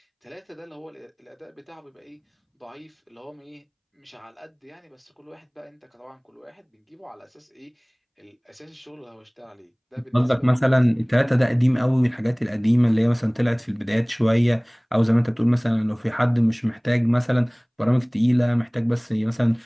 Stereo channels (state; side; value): identical; both; correlation 1.00